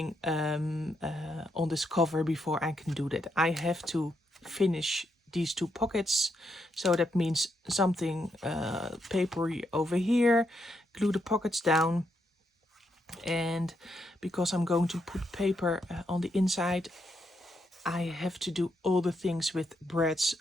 on this cover before I can do that. I have to finish these two pockets, so that means something papery over here, glue the pockets down, and because I'm going to put paper on the inside, I have to do all the things with breads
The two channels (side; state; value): both; normal; correlation 0.79